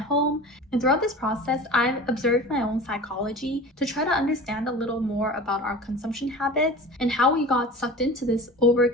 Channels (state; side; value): normal; both; correlation 0.36